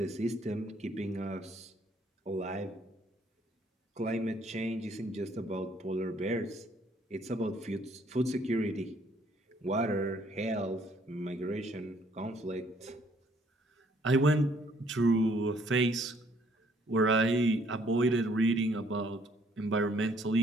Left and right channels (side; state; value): both; normal; correlation 0.64